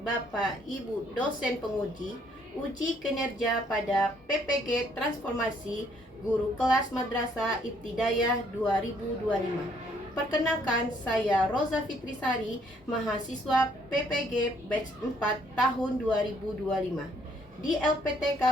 Bapak Ibu dosen penguji uji kinerja pada PPG Transformasi Guru Kelas Madrasah Ibtidaiyah 2025. Perkenalkan, saya Roza Fitrisari, mahasiswa PPG Batch 4 tahun 2025 di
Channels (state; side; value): normal; both; correlation 0.66